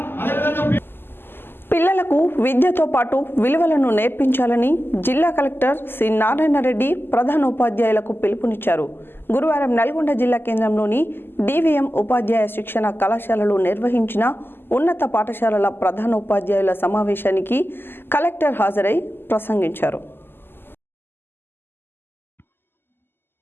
అదేవిధంగా పిల్లలకు విద్యతో పాటు విలువలను నేర్పించాలని జిల్లా కలెక్టర్ సి నారాయణ రెడ్డి ప్రధానోపాధ్యాయులకు పిలుపునిచ్చారు. గురువారం నల్గొండ జిల్లా కేంద్రంలోని డివిఎం ఉపాధ్యాయ శిక్షణ కళాశాలలో నిర్వహించిన ఉన్నత పాఠశాలల ప్రధానోపాధ్యాయుల సమావేశానికి కలెక్టర్ హాజరై ప్రసంగించారు.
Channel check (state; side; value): late; right; 0.10 ms